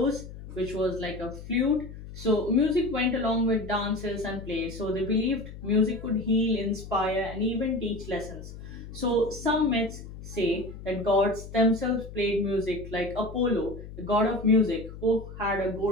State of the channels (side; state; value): left; noise; hum, 13 dB below the sound